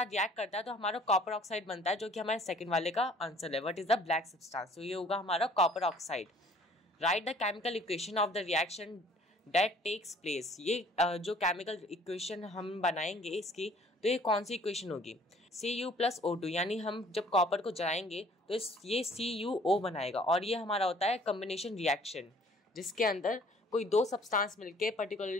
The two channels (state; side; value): normal; both; correlation 0.56